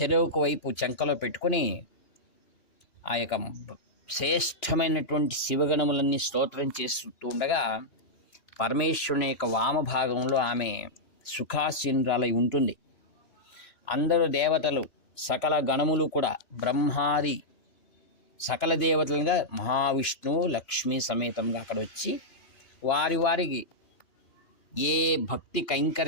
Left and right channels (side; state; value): right; late; 2.9 ms